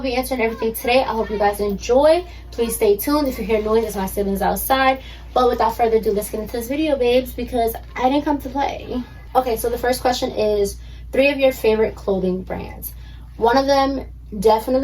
be answering everything today. I hope you guys enjoy. Please stay tuned. If you hear noise, it's my siblings outside. But without further ado, let's get into this video, babes, because I didn't come to play. Okay, so the first question is 3 of your favorite clothing brands. One of them,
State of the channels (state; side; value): identical; both; correlation 1.00